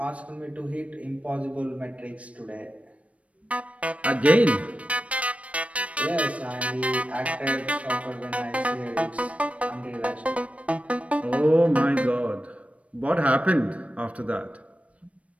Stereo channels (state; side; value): late; left; 0.064 ms